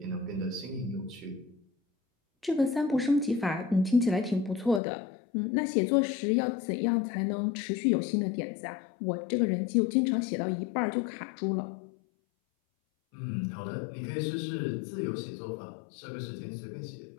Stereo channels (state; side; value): drops out; right; at 4.8 s